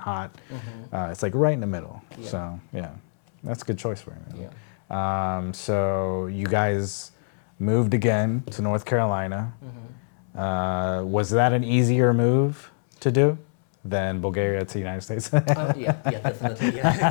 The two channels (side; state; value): right; silent; 62 dB below the other